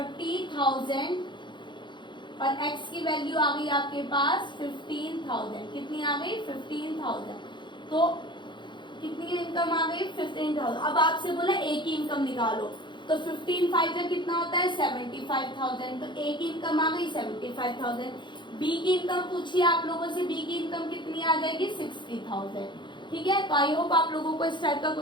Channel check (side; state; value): right; late; 0.23 ms